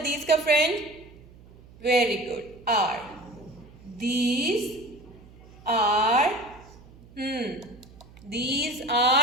these का friend? Very good. R. These are these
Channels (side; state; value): right; noise; hum, 22 dB below the sound